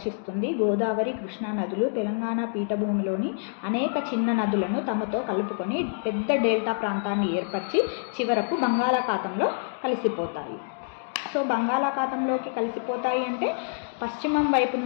గోదావరి, కృష్ణా నదులు తెలంగాణ పీఠభూమిలోని అనేక చిన్న నదులను తమతో కలుపుకొని పెద్ద డెల్టా ప్రాంతాన్ని ఏర్పరిచి చివరకు బంగాళాఖాతంలో కలిసిపోతాయి. సో బంగాళాఖాతంలోకి కలిసిపోతాయి అంటే పశ్చిమం వైపు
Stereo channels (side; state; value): right; silent; digital silence